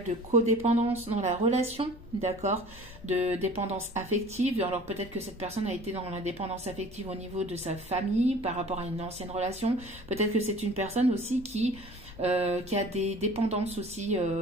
de codépendance dans la relation, d'accord, de dépendance affective. Alors peut-être que cette personne a été dans la dépendance affective au niveau de sa famille par rapport à une ancienne relation. Peut-être que c'est une personne aussi qui a des dépendances aussi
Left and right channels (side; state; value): left; noise; rumble, 20 dB below the sound